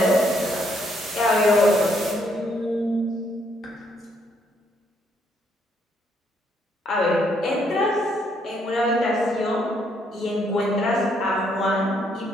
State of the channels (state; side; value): normal; both; correlation 0.71